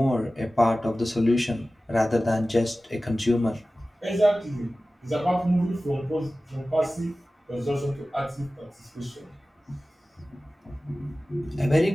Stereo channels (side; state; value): both; normal; correlation 0.96